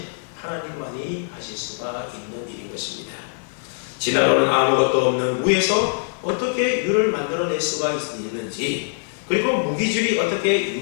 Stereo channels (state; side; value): silent; right; digital silence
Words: 하나님만이 하실 수가 있는 일인 것입니다. 진화론은 아무것도 없는 무에서 어떻게 유를 만들어낼 수가 있는지, 그리고 무기질이 어떻게